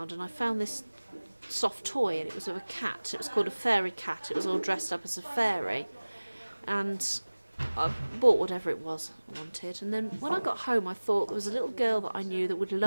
and I found this soft toy, and it was of a cat. It was called a fairy cat. It was all dressed up as a fairy, and I bought whatever it was I wanted. And then when I got home, I thought there was a little girl that I knew that would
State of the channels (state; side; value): inverted; both; correlation -1.00